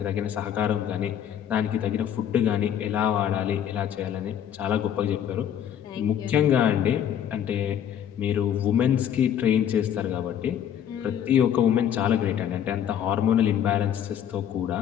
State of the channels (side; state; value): right; quieter; 9.5 dB